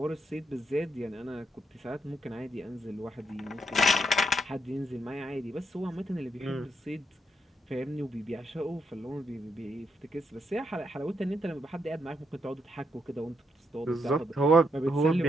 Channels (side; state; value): both; normal; correlation 0.78